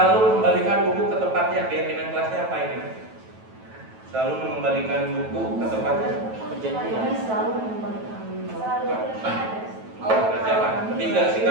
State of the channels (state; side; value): late; left; 9.1 ms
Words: mengembalikan buku ke tempatnya. Keyakinan kelasnya apa ini? Selalu mengembalikan buku ke tempatnya. Kami selalu mengembalikan. Berarti apa? Ketiga,